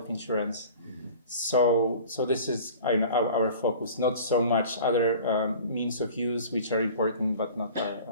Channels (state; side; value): inverted; both; correlation -0.43